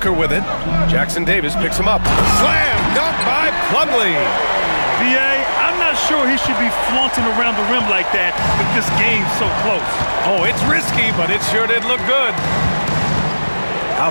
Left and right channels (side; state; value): both; inverted; correlation -1.00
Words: with it. Jackson Davis picks him up. Slam dunk by Plumlee. B.A., I'm not sure he should be flaunting around the rim like that with this game so close. Oh, it's risky, but it sure did look good.